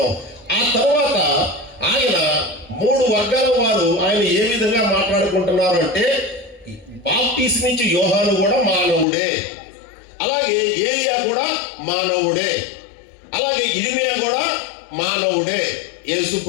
ఆ తర్వాత ఆయన 3 వర్గాల వారు ఆయన ఏ విధంగా మాట్లాడుకుంటున్నారు అంటే, బాప్తిస్మిచ్చు యోహాను కూడా మానవుడే, అలాగే ఏలియా కూడా మానవుడే, అలాగే ఇర్మియా కూడా మానవుడే, యేసు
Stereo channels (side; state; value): right; drops out; at 9.1 s